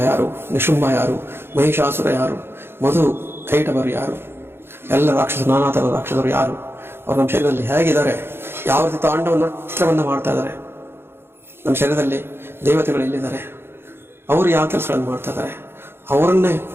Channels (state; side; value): late; left; 0.11 ms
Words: ಯಾರು, ನಿಶುಂಭ ಯಾರು, ಮಹಿಷಾಸುರ ಯಾರು, ಮಧು ಕೈಟವರು ಯಾರು, ಎಲ್ಲ ರಾಕ್ಷಸರು, ನಾನಾ ಥರದ ರಾಕ್ಷಸರು ಯಾರು, ಅವರು ನಮ್ಮ ಶರೀರದಲ್ಲಿ ಹೇಗಿದ್ದಾರೆ, ಯಾವ ರೀತಿ ತಾಂಡವನ್ನು ನೃತ್ಯವನ್ನು ಮಾಡ್ತಾ ಇದ್ದಾರೆ, ನಮ್ಮ ಶರೀರದಲ್ಲಿ ದೇವತೆಗಳು ಎಲ್ಲಿದ್ದಾರೆ, ಅವರು ಯಾವ ಕೆಲಸಗಳನ್ನು ಮಾಡ್ತಾ ಇದ್ದಾರೆ, ಅವರನ್ನೇ